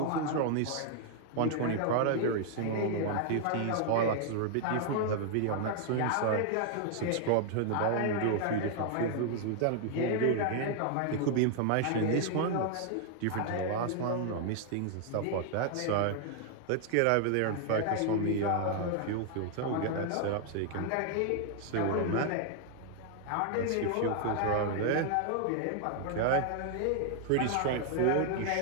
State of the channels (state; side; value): different; both; correlation 0.00